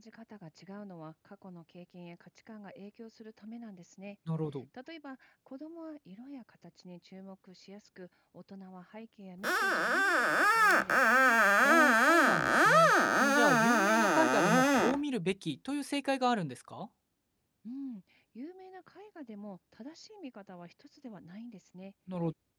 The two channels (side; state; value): both; identical; correlation 1.00